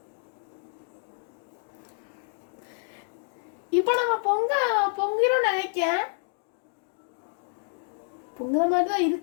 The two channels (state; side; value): silent; right; digital silence